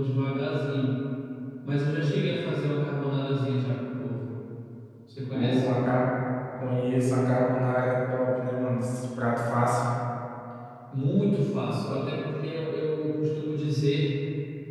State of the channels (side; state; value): both; identical; correlation 1.00